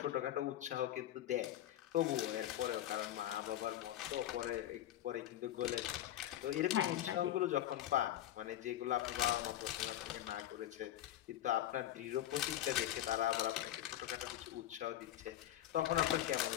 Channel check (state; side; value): quieter; right; 12.5 dB